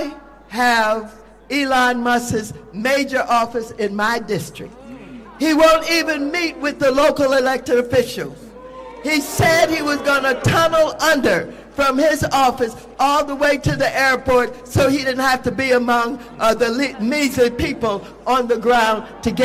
have Elon Musk's major office in my district. He won't even meet with the local elected officials. He said he was going to tunnel under from his office all the way to the airport so he didn't have to be among the measly people on the ground to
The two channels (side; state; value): both; identical; correlation 1.00